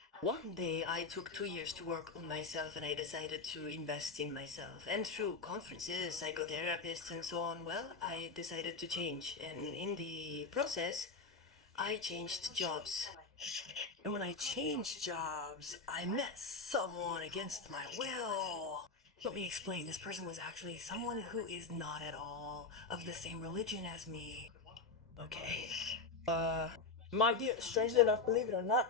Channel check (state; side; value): quieter; right; 4.2 dB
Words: One day I took 2 years to work on myself and I decided to invest in myself. And through conferences, psychotherapists and so on, well, I decided to change. And in the process, I changed jobs. And when I changed jobs, I met someone against my will. Let me explain. This person was actually someone who is not at all of the same religion as me. Okay. My dear, strangely enough, believe it or